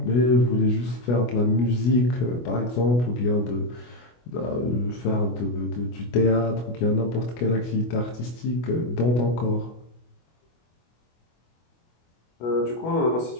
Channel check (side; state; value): right; late; 25 ms